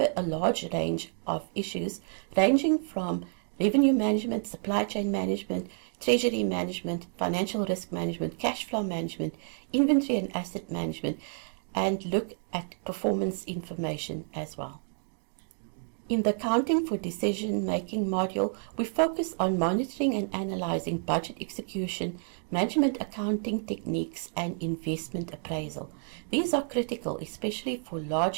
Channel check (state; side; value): silent; left; 58 dB below the other